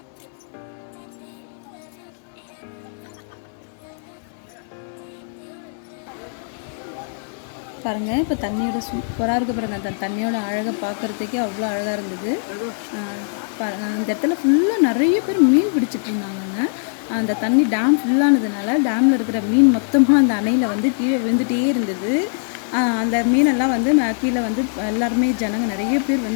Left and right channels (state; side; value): silent; right; digital silence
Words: பாருங்கள், இப்போ தண்ணியோட சூப்பராக இருக்குது பாருங்கள். அந்த தண்ணியோட அழகை பார்க்குறதுக்கே அவ்வளோ அழகாக இருந்தது. இந்த இடத்துல ஃபுல்லாக நிறைய பேர் மீன் பிடிச்சிட்டு இருந்தாங்கங்க. அந்த தண்ணி டேம் ஃபுல்லானதுனால டேமில் இருக்கிற மீன் மொத்தமாக அந்த அணையில் வந்து கீழே விழுந்துகிட்டே இருந்தது. அந்த மீனெல்லாம் வந்து கீழே வந்து எல்லாருமே ஜனங்க நிறைய பேர்